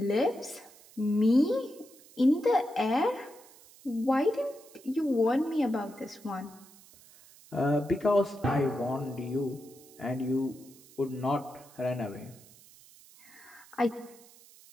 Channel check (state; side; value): noise; right; hiss, 23 dB below the sound